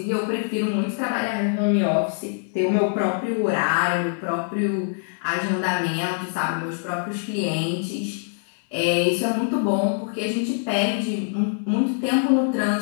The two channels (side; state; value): right; silent; digital silence